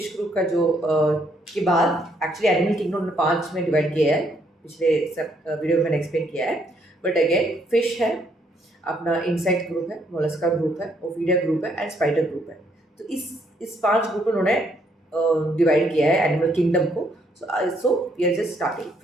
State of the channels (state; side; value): normal; both; correlation 0.71